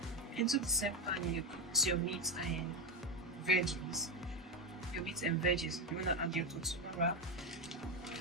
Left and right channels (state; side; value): normal; both; correlation 0.09